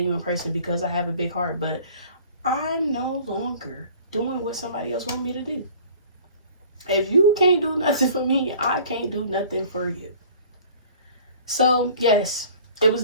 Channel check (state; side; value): inverted; both; correlation -0.48